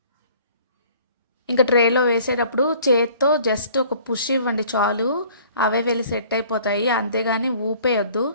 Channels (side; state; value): both; inverted; correlation -0.53